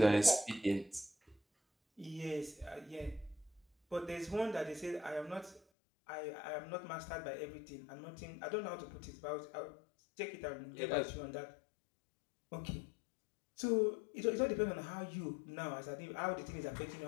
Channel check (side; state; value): right; drops out; at 5.6 s